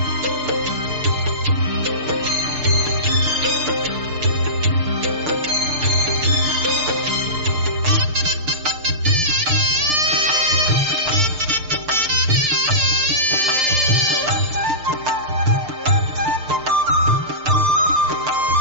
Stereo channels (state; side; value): late; left; 6.7 ms